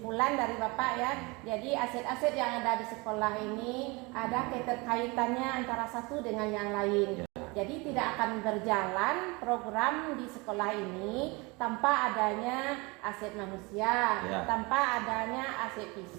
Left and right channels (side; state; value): left; quieter; 26.2 dB